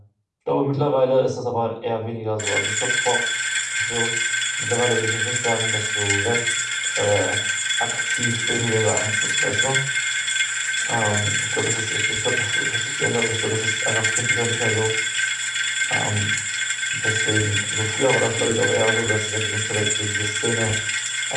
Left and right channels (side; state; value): both; identical; correlation 1.00